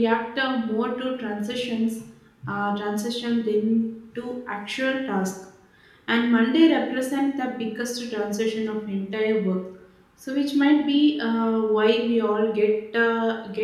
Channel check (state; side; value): identical; both; correlation 1.00